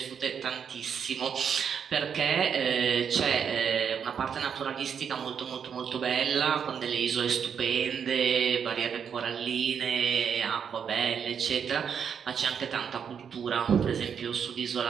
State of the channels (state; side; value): quieter; left; 7.4 dB